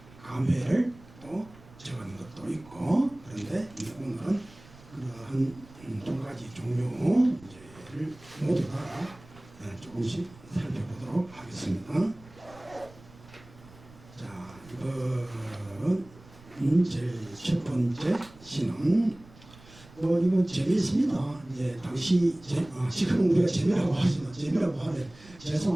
감회를 또 적은 것도 있고 그런데 오늘은 그러한 두 가지 종류를 모두 다 조금씩 살펴보도록 하겠습니다. 자, 이번 제일 첫 번째 시는 이건 재미있습니다. 이제 당시 지금 우리가 재미라고 하지만 재미라고 하면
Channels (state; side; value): noise; right; rumble, 22 dB below the sound